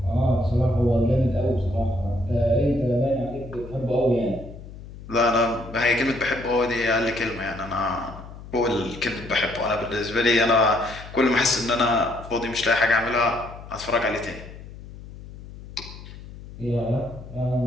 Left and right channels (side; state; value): left; noise; hum, 15 dB below the sound